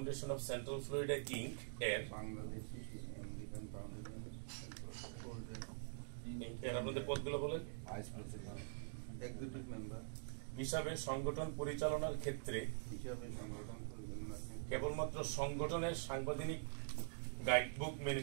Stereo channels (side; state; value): left; silent; digital silence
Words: of Central Florida Inc এর আপনাদের পদগুলো বলেন হিসাবে সংগঠন পরিচালনার ক্ষেত্রে কেবলমাত্র সংগঠনের সাংবিধানিক গাইডবুক মেনে